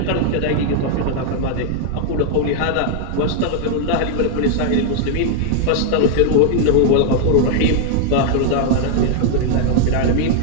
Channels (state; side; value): different; both; correlation 0.00